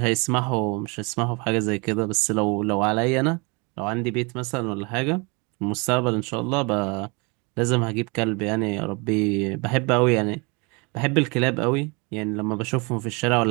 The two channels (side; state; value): left; quieter; 29.6 dB